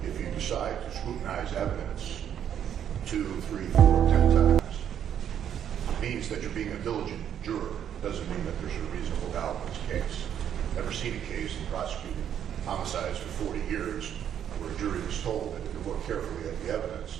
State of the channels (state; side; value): quieter; left; 9.4 dB